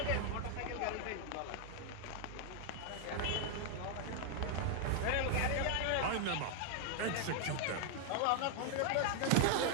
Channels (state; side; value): different; both; correlation 0.00